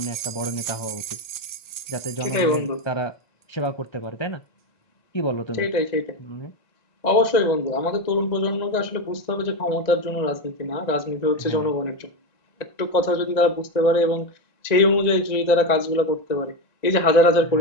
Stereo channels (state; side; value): late; right; 1.9 ms